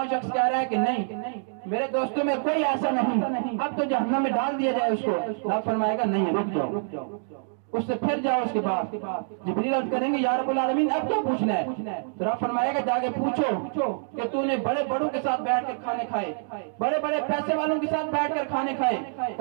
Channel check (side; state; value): left; silent; digital silence